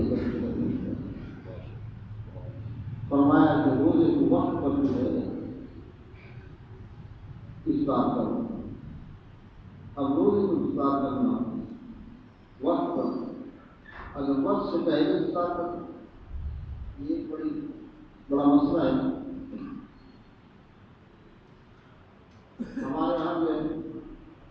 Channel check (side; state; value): both; identical; correlation 1.00